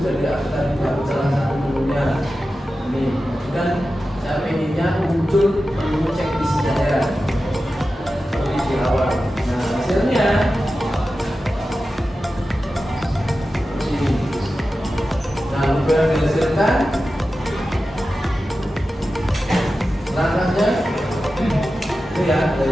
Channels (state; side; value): normal; both; correlation 0.93